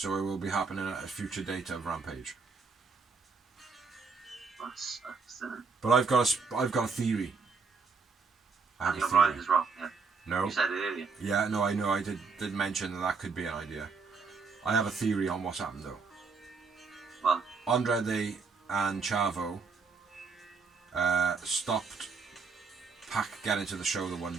it will be happening at a future date of Rampage. That sucks, doesn't it? But I've got a theory. Daniel Bryan is wrong, yeah. No. You said it earlier. Yeah, no, I know. I did mention that could be an idea. I have a theory on what's happened though. Well, Andrade and Chavo stopped Pac getting to the show the one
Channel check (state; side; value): quieter; left; 4.8 dB